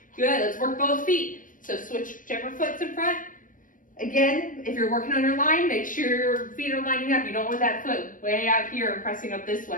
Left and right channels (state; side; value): late; right; 0.38 ms